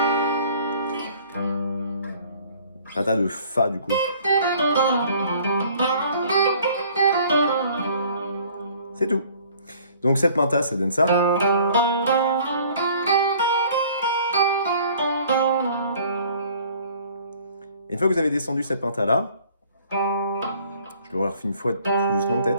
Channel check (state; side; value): inverted; both; correlation -0.55